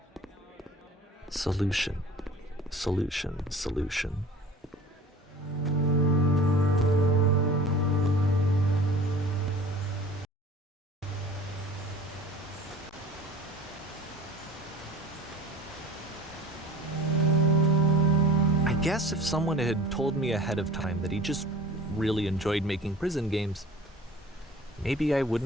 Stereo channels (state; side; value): normal; both; correlation 0.42